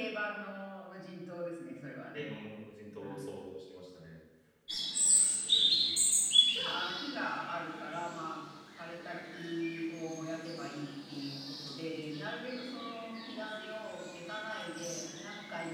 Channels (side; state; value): both; identical; correlation 1.00